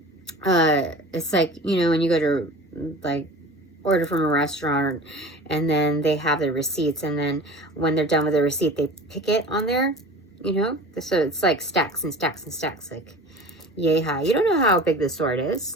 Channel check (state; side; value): normal; both; correlation 0.38